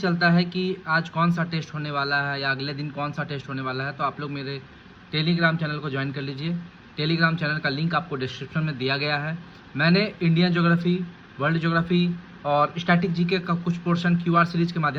है कि आज कौन सा टेस्ट होने वाला है या अगले दिन कौन सा टेस्ट होने वाला है, तो आप लोग मेरे टेलीग्राम चैनल को ज्वाइन कर लीजिए। टेलीग्राम चैनल का लिंक आपको डिस्क्रिप्शन में दिया गया है। मैंने इंडियन ज्योग्राफी, वर्ल्ड ज्योग्राफी और स्टैटिक जीके का कुछ पोर्शन क्यूआर सीरीज के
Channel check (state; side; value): identical; both; correlation 1.00